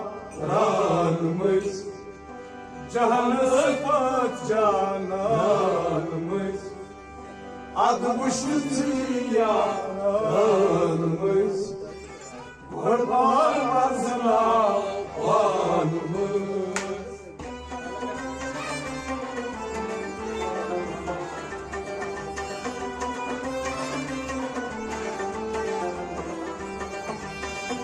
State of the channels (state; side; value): identical; both; correlation 1.00